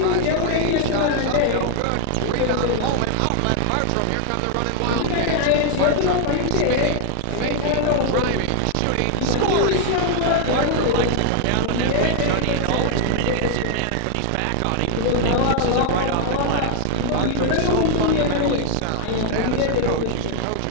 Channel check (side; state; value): both; different; correlation 0.00